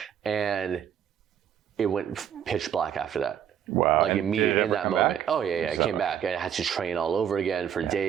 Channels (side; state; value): left; quieter; 9.1 dB